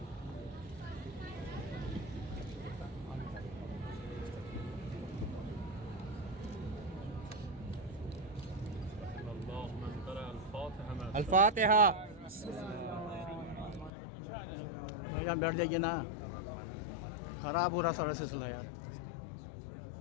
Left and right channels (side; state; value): right; drops out; at 13.9 s